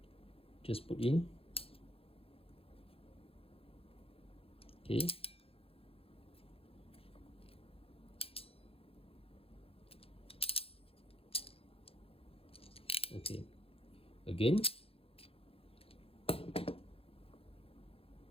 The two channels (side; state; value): right; late; 0.27 ms